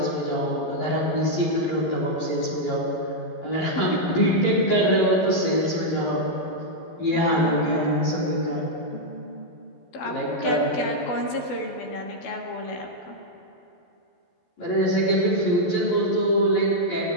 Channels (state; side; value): late; right; 12 ms